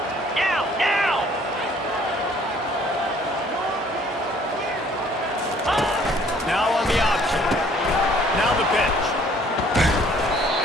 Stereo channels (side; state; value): both; normal; correlation 0.59